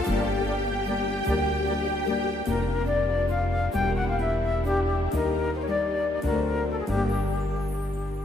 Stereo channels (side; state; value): both; normal; correlation 0.75